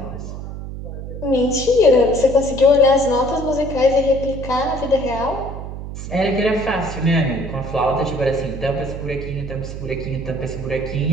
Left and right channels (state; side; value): noise; right; hum, 9 dB below the sound